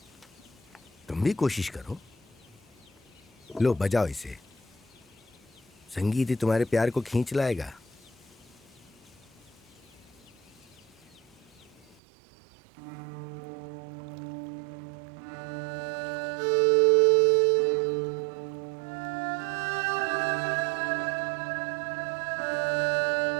तुम भी कोशिश करो, लो बजाओ इसे। संगीत ही तुम्हारे प्यार को खींच लाएगा।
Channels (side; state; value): left; drops out; at 12.0 s